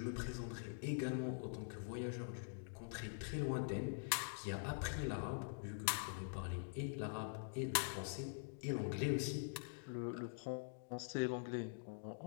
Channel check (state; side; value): silent; right; digital silence